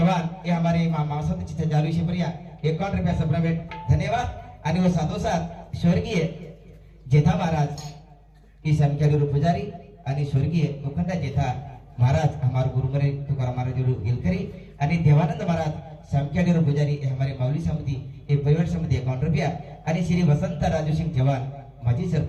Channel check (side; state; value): both; identical; correlation 1.00